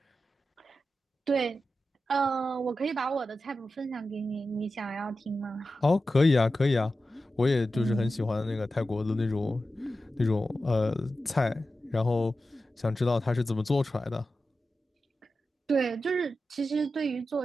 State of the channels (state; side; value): normal; both; correlation 0.92